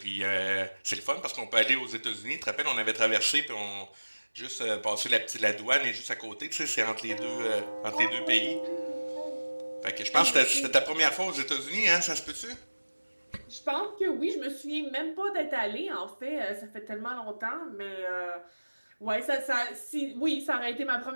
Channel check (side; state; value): both; inverted; correlation -1.00